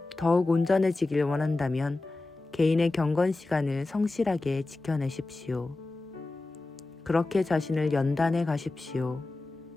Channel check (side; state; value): right; quieter; 3.2 dB